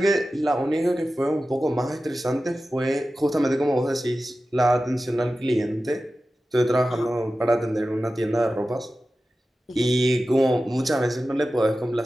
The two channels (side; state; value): both; normal; correlation 0.94